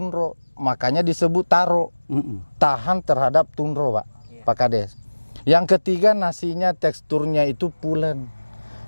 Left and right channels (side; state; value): both; inverted; correlation -1.00